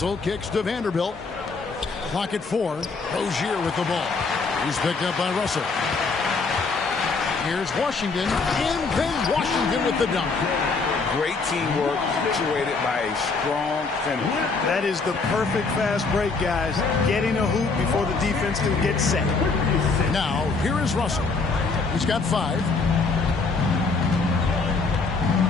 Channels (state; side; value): quieter; right; 4.3 dB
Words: kicks to Vanderbilt. Clock at 4. Rozier with the ball. He's picked up by Russell. Here's Washington. And then Washington with the dunk. Great teamwork, punctuated by a strong finish. That is the perfect fast break, guys. Getting a hoop before the defense can get set. Now, here is Russell. He's got 5.